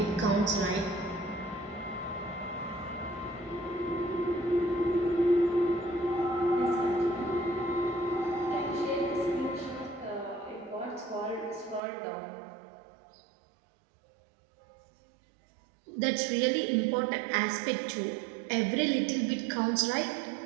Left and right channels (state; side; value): drops out; left; at 11.8 s